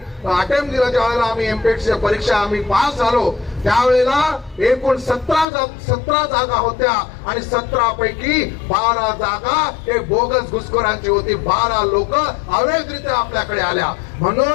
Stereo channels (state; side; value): drops out; right; at 5.5 s